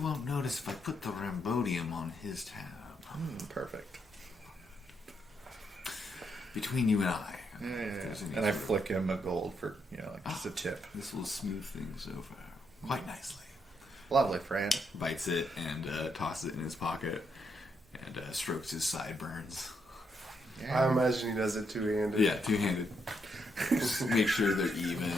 notice if I put the Rambodium on his tab. Perfect. Between you and I. Yeah. If there's any And I sort of- flick him a gold for, like just a tip. This will smooth things over quite nicely. Lovely, friend. Bites it and tosses it in his pocket and strokes his sideburns. I imagine he does it two-handed. Yeah, two-handed. Just make sure they're even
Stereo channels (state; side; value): normal; both; correlation 0.78